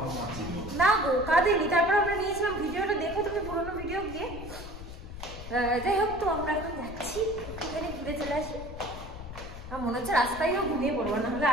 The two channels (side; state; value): left; noise; rumble, 11 dB below the sound